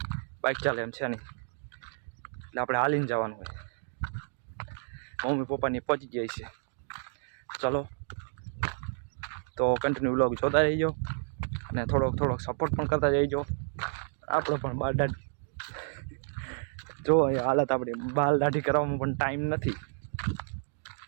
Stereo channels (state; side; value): silent; left; digital silence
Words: બાઇક ચાલે એમ છે નહીં, એટલે આપણે હાલીને જવાનું હોય। મમ્મી પપ્પાની પહોંચી જાય છે। ચલો તો કન્ટિન્યુ વ્લોગ જોતા રહીજો અને થોડોક સપોર્ટ પણ કરતા જઈજો। આપણો પણ બાલ દાઢી જો હાલત આપણી બાલ દાઢી કરવામાં પણ ટાઈમ નથી।